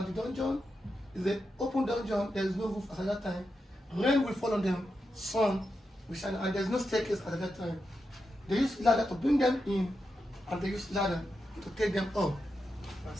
the dungeon. It's an open dungeon, there's no roof at that time. Rain will fall on them, sun will shine, and there's no staircase at that time. They use ladder to bring them in, and they use ladder to take them up.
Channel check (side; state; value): both; normal; correlation 0.88